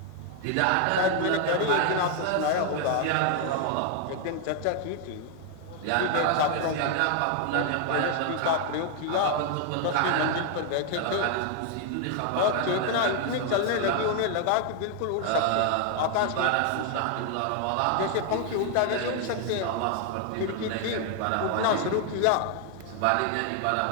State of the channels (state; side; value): different; both; correlation 0.00